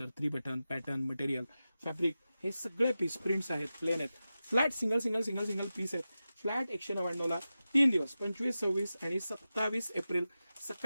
3 button, pattern, material, fabric, हे सगळे पीस प्रिंट्स आहेत, प्लेन आहेत, flat single single single single piece आहेत. फ्लॅट 199ला 3 दिवस 25, 26 आणि 27 एप्रिल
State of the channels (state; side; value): inverted; both; correlation -0.93